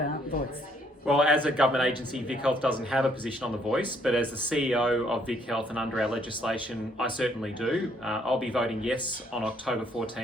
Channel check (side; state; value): both; normal; correlation 0.68